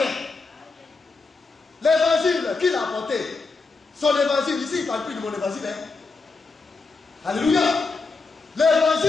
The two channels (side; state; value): right; quieter; 4.1 dB